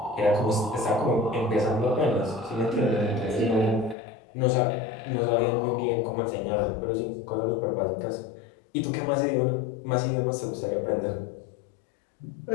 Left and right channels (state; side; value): drops out; right; at 4.0 s